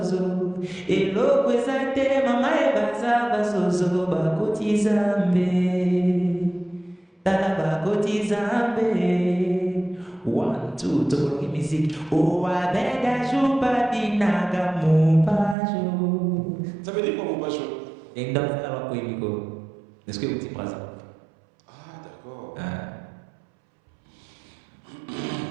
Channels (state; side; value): drops out; left; at 15.6 s